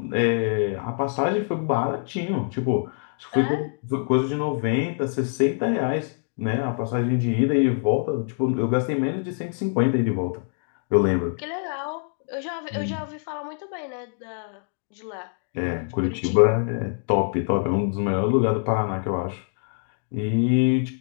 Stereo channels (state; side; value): silent; right; 62 dB below the other